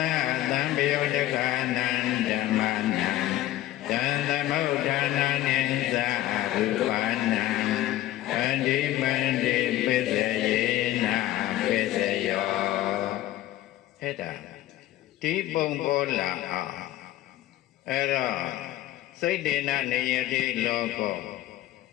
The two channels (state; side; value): quieter; right; 14.5 dB